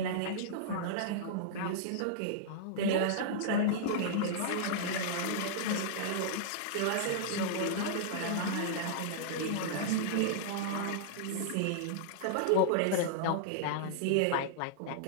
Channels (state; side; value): different; both; correlation -0.02